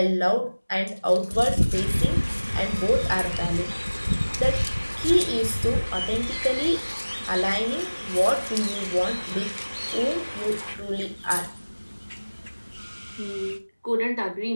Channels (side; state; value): both; inverted; correlation -1.00